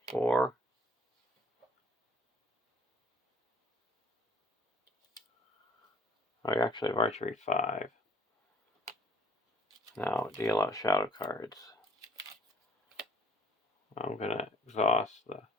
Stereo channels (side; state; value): both; normal; correlation 0.56